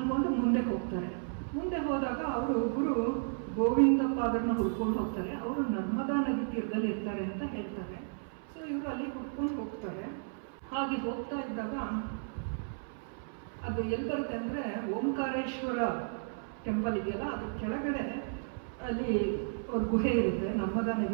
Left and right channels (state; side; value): silent; left; 56 dB below the other